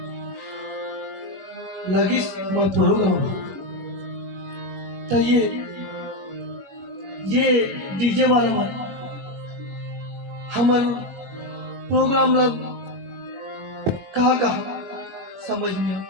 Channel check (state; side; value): late; left; 21 ms